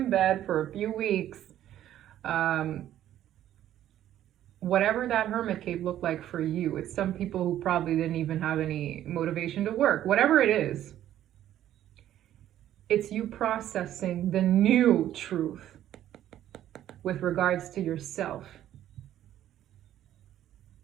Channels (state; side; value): quieter; left; 12.0 dB